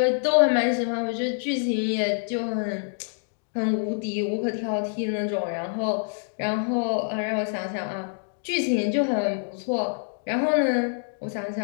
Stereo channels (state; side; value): silent; right; 61 dB below the other